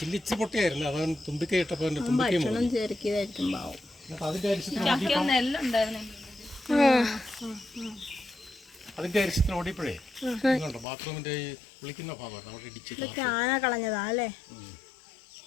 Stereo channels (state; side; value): drops out; right; at 10.9 s